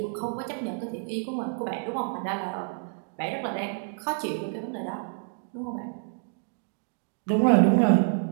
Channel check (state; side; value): silent; left; 59 dB below the other